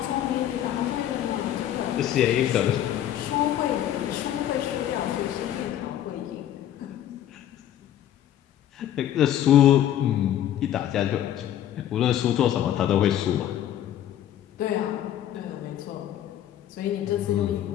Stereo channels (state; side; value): quieter; right; 11.3 dB